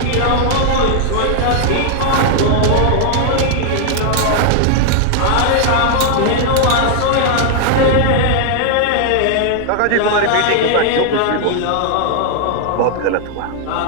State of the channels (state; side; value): different; both; correlation 0.00